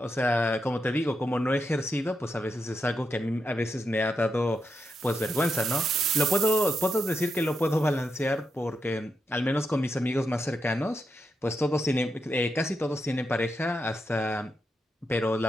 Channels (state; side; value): normal; both; correlation 0.85